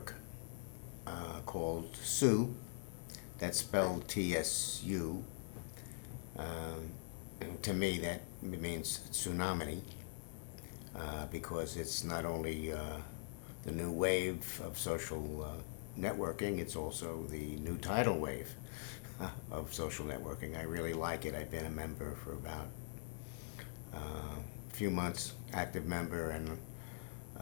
called TSU. That's spelled TSU. And to me, that means tsunami, because it's not only the new wave of social networking, it's also the new tidal wave of social networking. I really like it. I've been a member for about a few months, active member, and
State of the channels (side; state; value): right; silent; digital silence